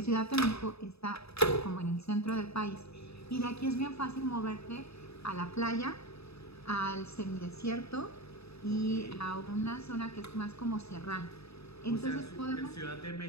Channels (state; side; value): late; right; 0.78 ms